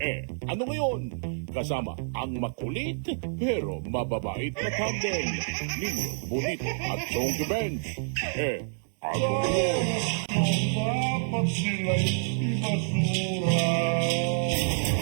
ano ngayon? Kasama ang makulit pero mababait na tandem ni Bonito at Chonky Bench. Ano ngayon? Dapat sila'y ibasura.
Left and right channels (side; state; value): left; silent; 59 dB below the other